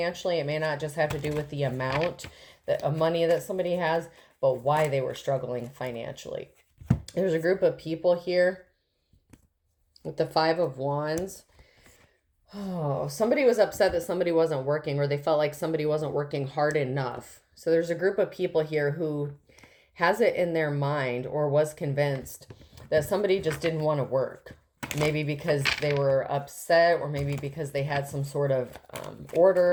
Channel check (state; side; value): identical; both; correlation 1.00